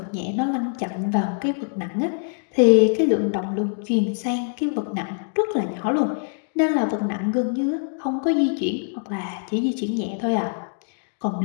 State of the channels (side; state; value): right; silent; digital silence